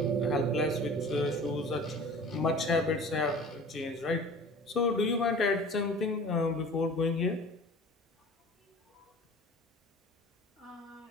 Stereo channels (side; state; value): both; normal; correlation 0.42